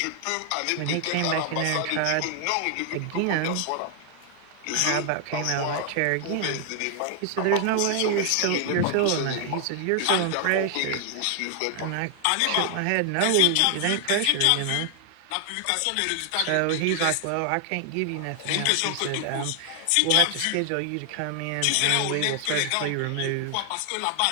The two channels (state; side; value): different; both; correlation 0.00